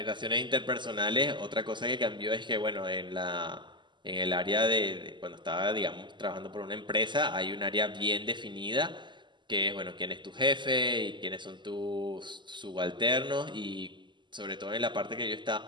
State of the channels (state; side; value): late; left; 0.22 ms